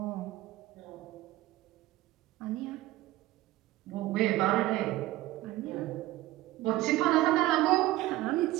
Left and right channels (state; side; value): quieter; left; 16.8 dB